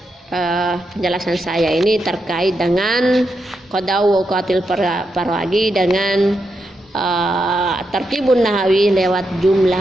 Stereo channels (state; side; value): normal; both; correlation 0.84